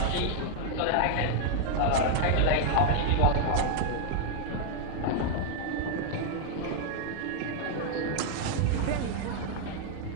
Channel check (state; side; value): different; both; correlation 0.00